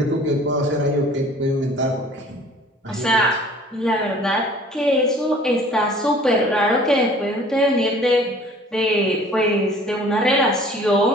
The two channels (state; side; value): normal; both; correlation 0.50